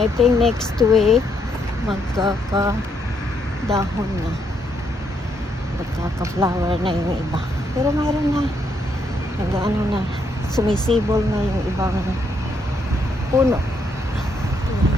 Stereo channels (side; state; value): both; normal; correlation 0.75